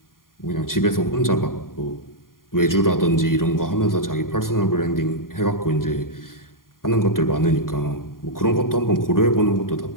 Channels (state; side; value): late; right; 0.91 ms